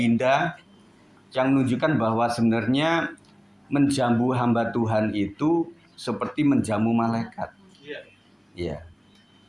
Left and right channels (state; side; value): identical; both; correlation 1.00